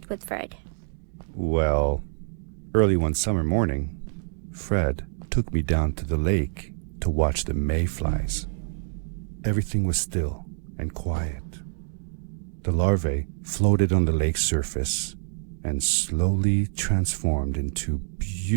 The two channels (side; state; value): left; silent; digital silence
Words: with Fred. Well, early one summer morning, Fred took me down to the lake to watch the mayflies. Everything was still and quiet. The larvae floated on the lake's surface and slowly transformed into